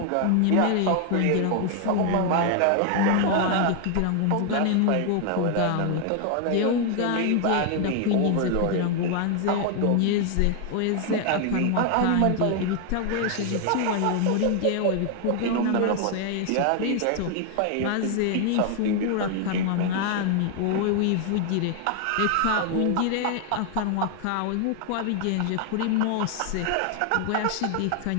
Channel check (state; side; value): different; both; correlation 0.00